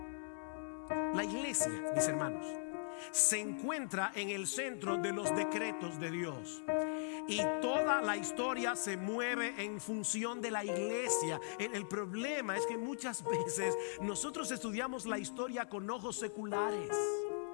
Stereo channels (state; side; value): silent; right; digital silence